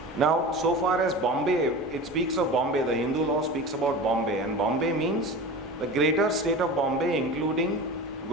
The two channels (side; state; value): both; normal; correlation 0.32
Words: Now, so far as Bombay, it speaks of Bombay, the Hindu law speaks about Bombay, and Bombay means the greater state of Bombay including